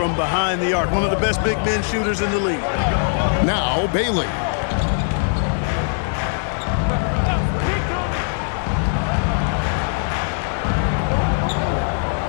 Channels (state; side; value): silent; right; digital silence